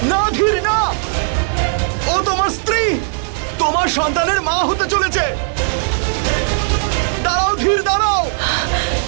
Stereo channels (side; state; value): left; silent; 61 dB below the other